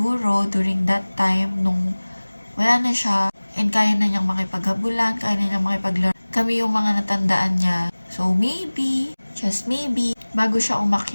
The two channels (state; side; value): inverted; both; correlation -1.00